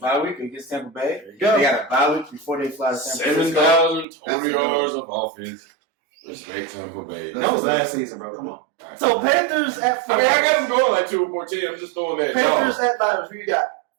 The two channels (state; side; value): drops out; left; at 4.0 s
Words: week against Tampa Bay. They got a bye week before they fly to San Francisco. 7,000 total yards of offense. Respect Tampa Bay. That was last season, bro. Come on. So Panthers at 49ers. I mean, I got them going like 2-14. I'm just throwing that. Panthers at Niners. Who you got?